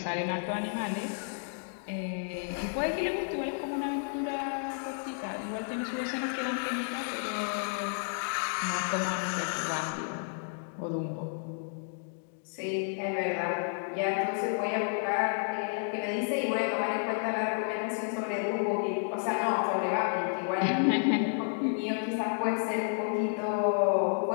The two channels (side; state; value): right; silent; digital silence